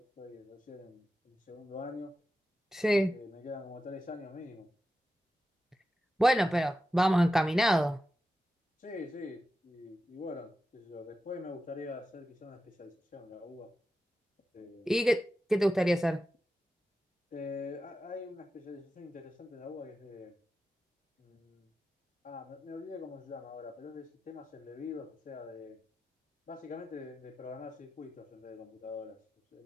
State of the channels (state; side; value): normal; both; correlation 0.92